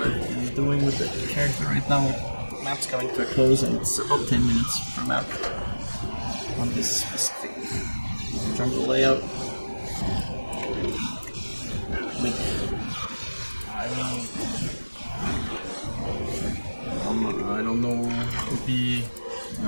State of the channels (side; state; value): both; inverted; correlation -1.00